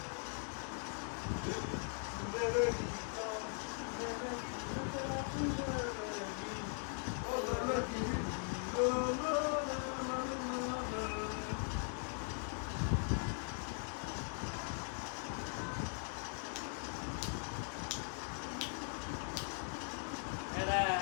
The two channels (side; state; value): right; silent; 51 dB below the other